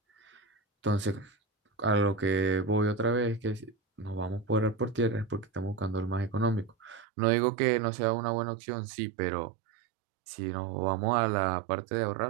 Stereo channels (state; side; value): drops out; left; at 7.1 s